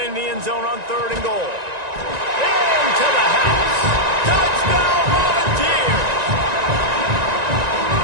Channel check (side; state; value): left; late; 1.9 ms